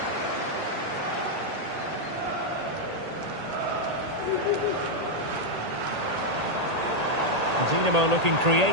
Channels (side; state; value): left; late; 1.8 ms